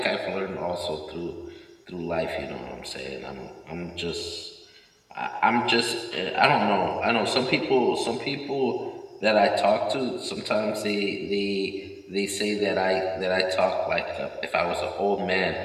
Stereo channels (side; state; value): both; identical; correlation 1.00